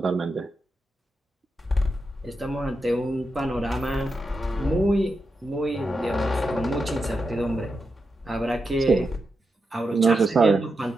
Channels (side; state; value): both; normal; correlation 0.87